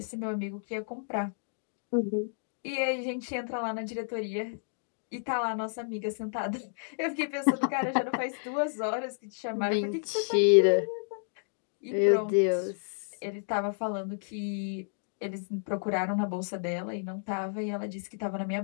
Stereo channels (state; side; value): silent; right; digital silence